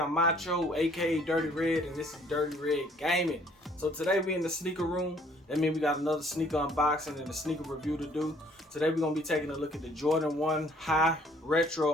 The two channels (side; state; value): both; normal; correlation 0.60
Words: Macho, aka Dirty Red, and this is Dirty Red Gaming. So today we in the sneaker room. That means we got another sneaker unboxing and a sneaker review to do. Today we're gonna be taking a look at the Jordan 1 High